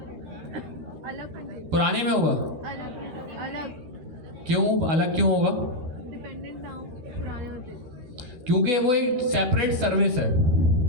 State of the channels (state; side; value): late; left; 13 ms